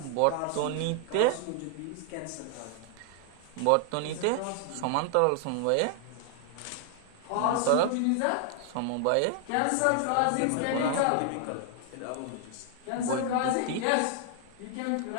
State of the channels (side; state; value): both; different; correlation 0.00